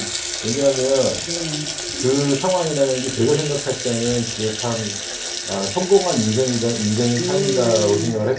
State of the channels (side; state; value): both; identical; correlation 1.00